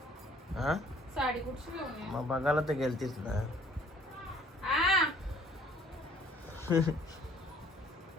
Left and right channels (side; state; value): both; normal; correlation 0.57